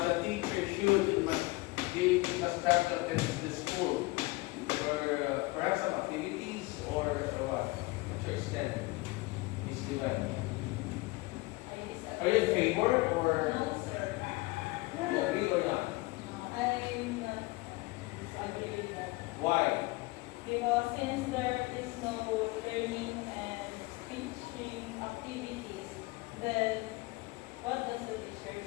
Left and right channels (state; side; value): quieter; right; 22.8 dB